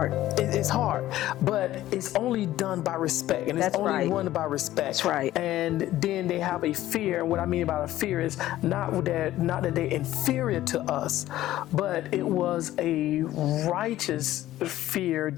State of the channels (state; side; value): quieter; right; 14.5 dB